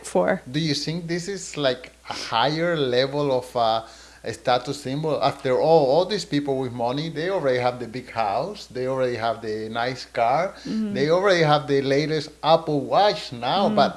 for? Do you think this is like a higher level of a status symbol? After all these people with money, they already have the big house, they already have the nice car, Mm, they already have the latest Apple Watch now, mm,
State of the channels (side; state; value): both; identical; correlation 1.00